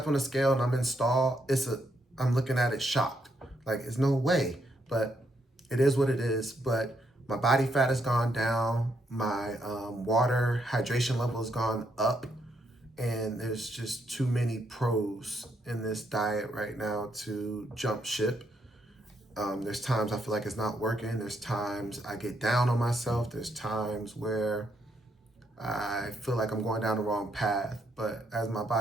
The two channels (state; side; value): normal; both; correlation 0.76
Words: on the scale and I'm in stall, I'm looking at it shocked. Like, it's no way, but it is what it is. But my body fat has gone down. My water hydration level has gone up. And there's just too many pros in this diet right now to jump ship. There's times I feel like it's not working. There's times I get down on myself. There's times where I feel like I'm going down the wrong path. But as my